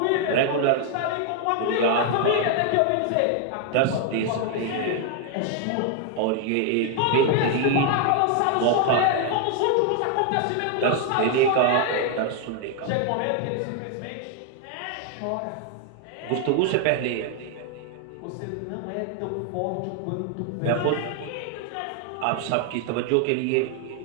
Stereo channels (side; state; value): both; different; correlation 0.00